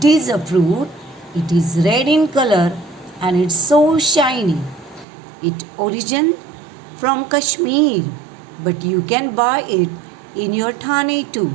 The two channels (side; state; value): left; drops out; at 5.1 s